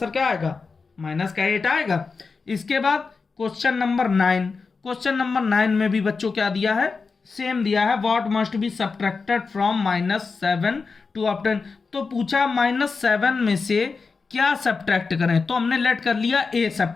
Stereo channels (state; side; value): quieter; right; 4.6 dB